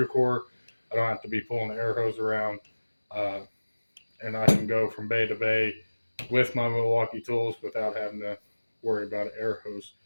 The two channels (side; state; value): both; inverted; correlation -1.00